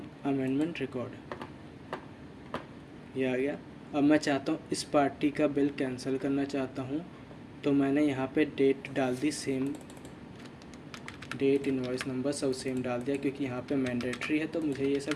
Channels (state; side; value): identical; both; correlation 1.00